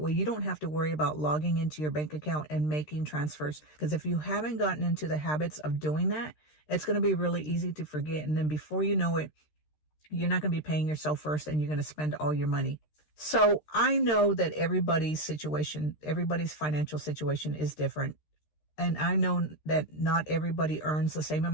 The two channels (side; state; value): right; late; 13 ms